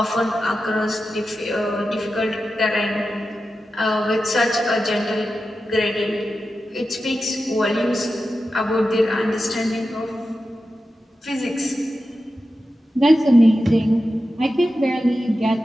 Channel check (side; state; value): both; normal; correlation 0.91